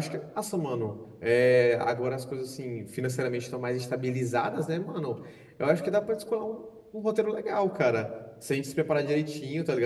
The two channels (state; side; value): identical; both; correlation 1.00